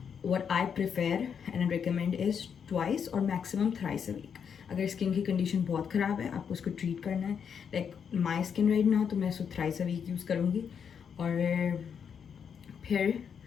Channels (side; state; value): right; quieter; 7.2 dB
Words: what I prefer and recommend is twice or maximum thrice a week. अगर स्किन की कंडीशन बहुत ख़राब है, आपको उसको ट्रीट करना है, like my skin right now, तो मैं उसको थ्राइस अ वीक यूज़ करूँगी। और फिर